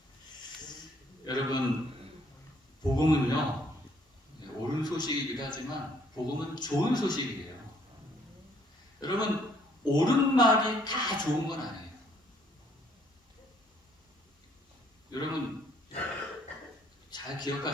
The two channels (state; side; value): normal; both; correlation 0.65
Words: 여러분, 복음은요, 옳은 소식이기도 하지만 복음은 좋은 소식이에요. 여러분, 옳은 말이 다 좋은 건 아니에요. 여러분, 잘